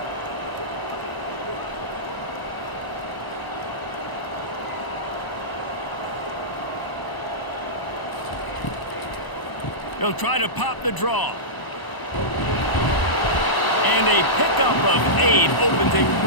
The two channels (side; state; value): right; late; 1.0 ms